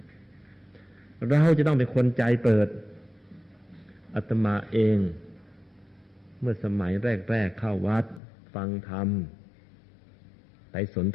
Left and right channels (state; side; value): drops out; right; at 8.2 s